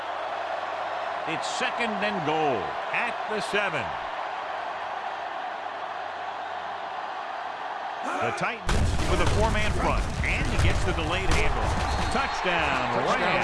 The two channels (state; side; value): identical; both; correlation 1.00